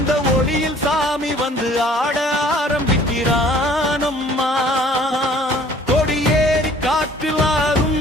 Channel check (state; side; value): normal; both; correlation 0.54